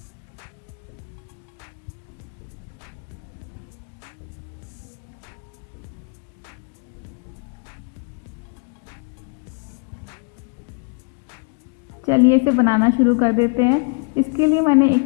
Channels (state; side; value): quieter; right; 37.4 dB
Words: चलिए इसे बनाना शुरू कर देते हैं। इसके लिए मैंने एक